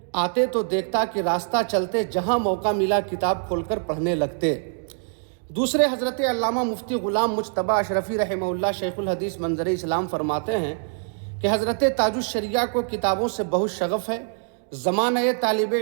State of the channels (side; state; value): left; silent; 62 dB below the other